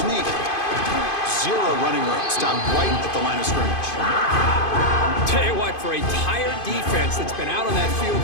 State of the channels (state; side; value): late; right; 2.5 ms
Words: sneak. 0 running room. Stopped right at the line of scrimmage. Tell you what, for a tired defense that's been out on that field